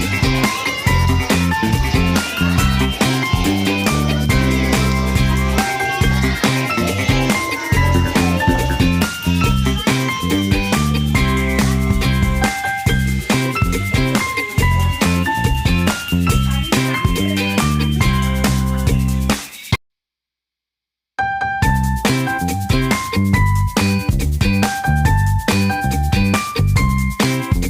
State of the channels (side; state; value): both; identical; correlation 1.00